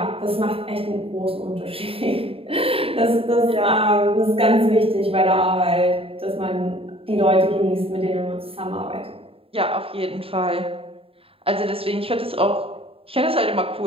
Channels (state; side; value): late; left; 0.27 ms